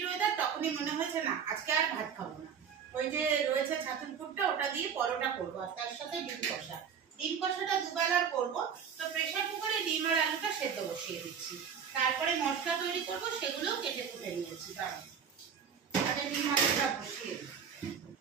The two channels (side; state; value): left; quieter; 7.2 dB